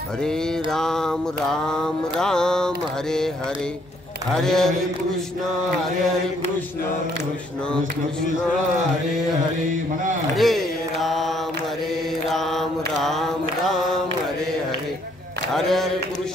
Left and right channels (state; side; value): normal; both; correlation 0.67